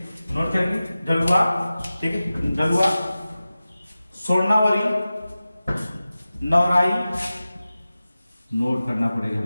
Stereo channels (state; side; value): inverted; both; correlation -0.95